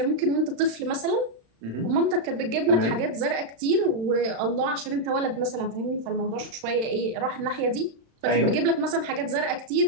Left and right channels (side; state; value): left; late; 35 ms